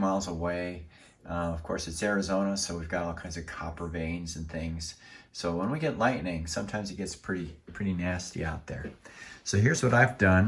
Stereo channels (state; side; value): identical; both; correlation 1.00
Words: away. Of course, it's Arizona, so we've got all kinds of copper veins and things. So when we get lightning, sometimes it gets pretty nasty out there. So here's what I've